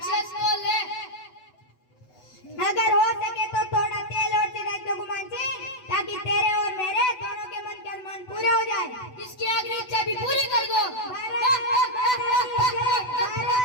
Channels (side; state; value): right; late; 8.0 ms